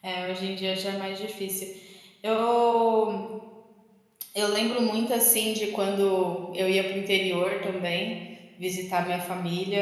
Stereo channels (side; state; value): both; identical; correlation 1.00